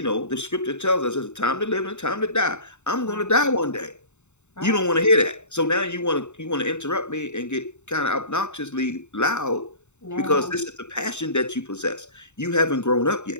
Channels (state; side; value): late; right; 0.83 ms